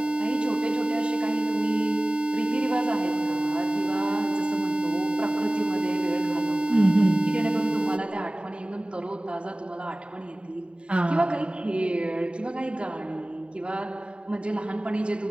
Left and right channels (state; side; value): late; left; 0.055 ms